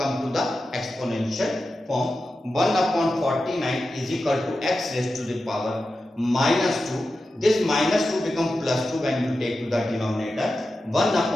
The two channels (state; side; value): normal; both; correlation 0.92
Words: to the exponential form. 1 upon 49 is equal to x raised to the power minus 2. This minus 2 become plus 2 when you take to the denominator. 1